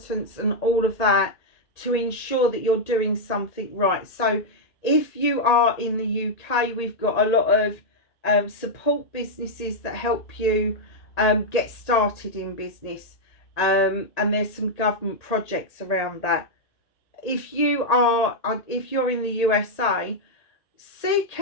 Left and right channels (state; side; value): late; right; 1.8 ms